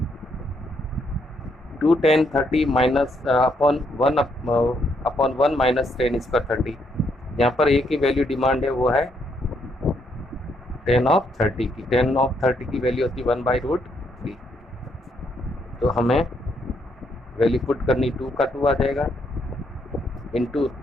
2 10 30 माइनस अपॉन 1 माइनस 10 स्क्वायर 30। यहाँ पर एक ही वैल्यू डिमांड है, वो है 10 ऑफ 30 की। 10 ऑफ 30 की वैल्यू होती है 1/√3। तो हमें वैल्यू पुट करनी 2 का 2 आ जाएगा, इंटू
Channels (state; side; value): normal; both; correlation 0.74